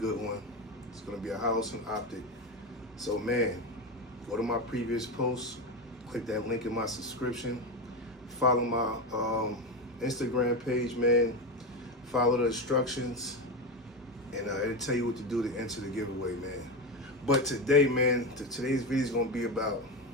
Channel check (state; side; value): normal; both; correlation 0.17